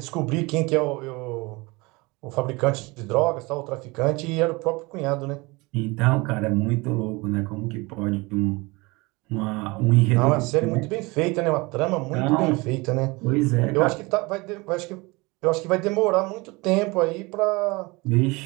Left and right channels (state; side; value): quieter; left; 24.6 dB